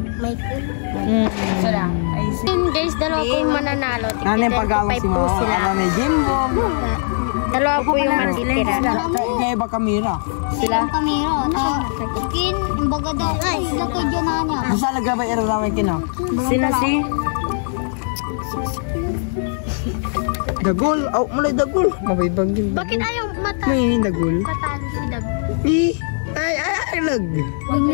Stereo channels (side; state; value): right; silent; digital silence